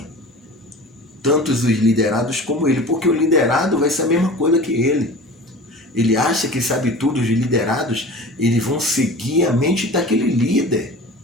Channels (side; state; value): both; normal; correlation 0.38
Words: tanto os liderados como ele, porque o liderado vai ser a mesma coisa que ele. Ele acha que sabe tudo, os liderados, eles vão seguir a mente daquele líder.